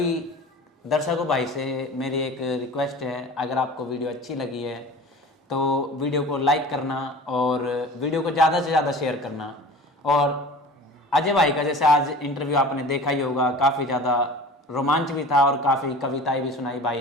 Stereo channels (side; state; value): both; normal; correlation 0.39